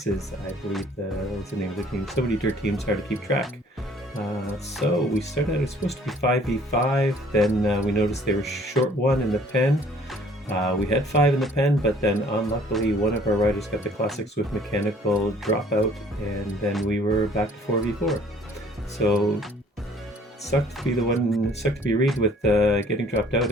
I believe was the name of the team. So many dirt teams, hard to keep track. So we started out. It was supposed to be 5v5. Then we noticed they were short one in the pen. We had 5 in the pen, but then unluckily one of our riders got the classic Zwift mechanical dropout, and then we were back to 4v4. So sucked to be Reed with getting dropped out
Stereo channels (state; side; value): normal; both; correlation 0.57